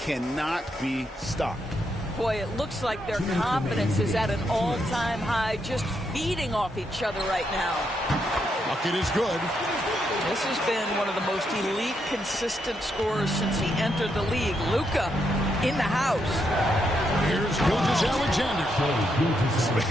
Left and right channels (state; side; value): normal; both; correlation 0.79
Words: be stopped. Boy, it looks like their confidence is at an all-time high, just feeding off each other right now. Bucket is good. This has been one of the most elite, consistent scorers since he entered the league. Luka in the house. Here's Gilgeous-Alexander.